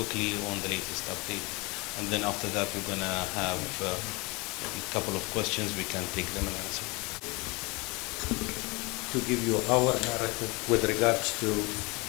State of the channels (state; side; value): quieter; right; 26.4 dB